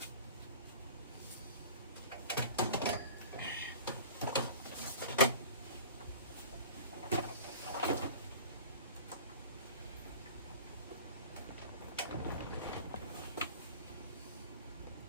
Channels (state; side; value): inverted; both; correlation -0.40